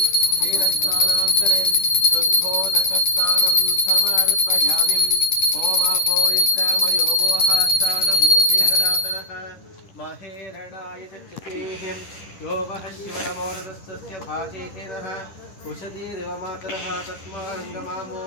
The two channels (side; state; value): right; late; 10 ms